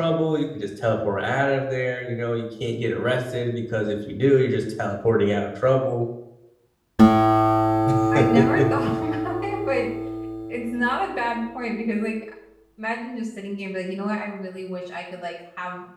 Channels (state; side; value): identical; both; correlation 1.00